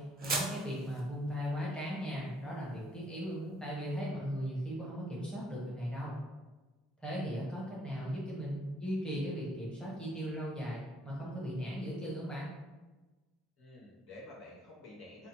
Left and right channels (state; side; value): normal; both; correlation 0.69